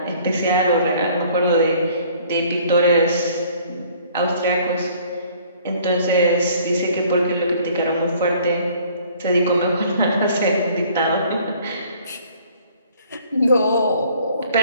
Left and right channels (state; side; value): inverted; both; correlation -0.56